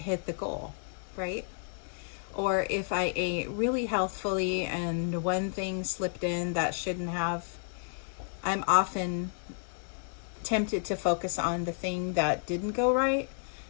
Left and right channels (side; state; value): right; silent; digital silence